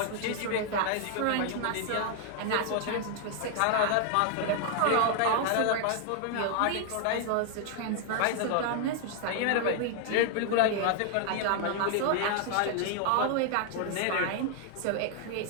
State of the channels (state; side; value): different; both; correlation 0.00